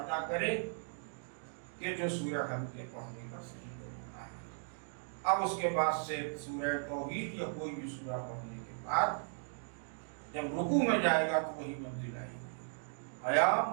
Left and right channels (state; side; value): silent; left; digital silence